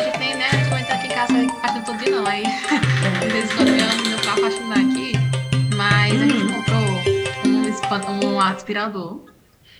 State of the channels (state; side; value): identical; both; correlation 1.00